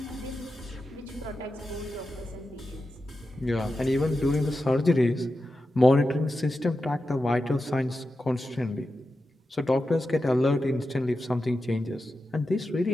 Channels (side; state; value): both; normal; correlation 0.91